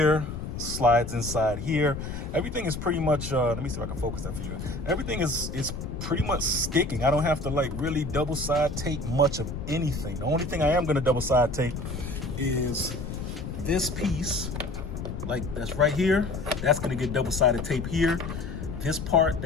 slides inside here. Everything is pretty much let me see if I can focus that for you. Everything is pretty much sticking. I don't have to like really double side tape much of anything. The only thing I am going to double side tape is this piece, like that's right here. That's going to get double sided tape here. This part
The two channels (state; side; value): noise; left; rumble, 6 dB below the sound